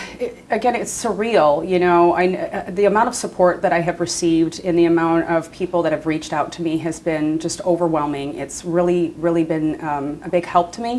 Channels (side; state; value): both; identical; correlation 1.00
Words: Again, it's surreal, the amount of support that I have received and the amount of people that have reached out to me has been just overwhelming. It's really, really been a big help to